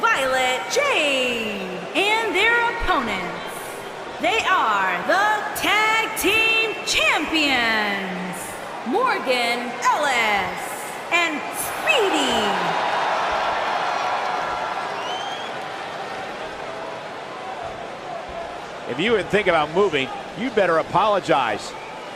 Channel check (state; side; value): identical; both; correlation 1.00